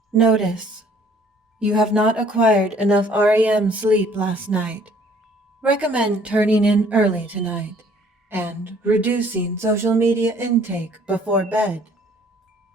Notice: you have not acquired enough REM sleep last night. Recommend turning in early tonight and reducing social media intake before bed.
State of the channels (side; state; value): both; normal; correlation 0.58